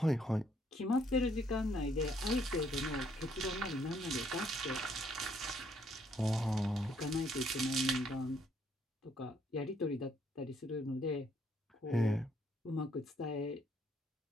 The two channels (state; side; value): normal; both; correlation 0.68